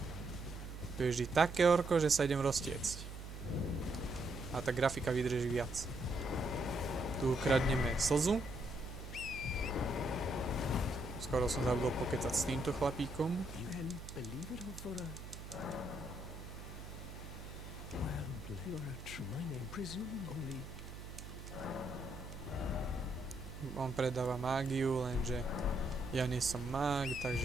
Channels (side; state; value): right; noise; hum, 10 dB below the sound